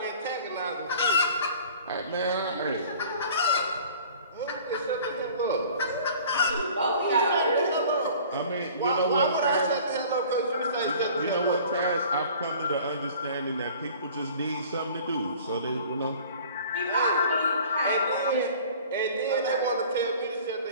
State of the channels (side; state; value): both; inverted; correlation -0.48